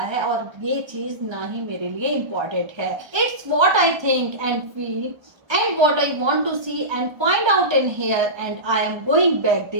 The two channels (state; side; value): late; left; 1.3 ms